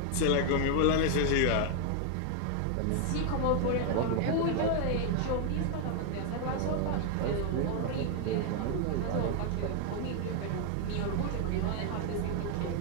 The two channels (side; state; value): both; different; correlation 0.00